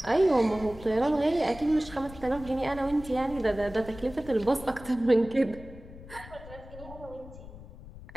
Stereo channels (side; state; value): left; noise; rumble, 16 dB below the sound